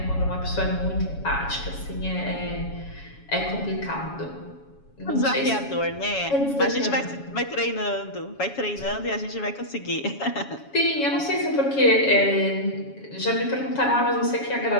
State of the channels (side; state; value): right; late; 7.2 ms